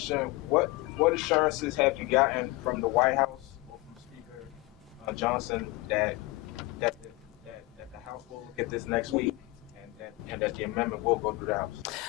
what assurances have you gotten from the White House or from Speaker Johnson that the House will get this next week and that the amendment will go through the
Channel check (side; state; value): right; quieter; 21.5 dB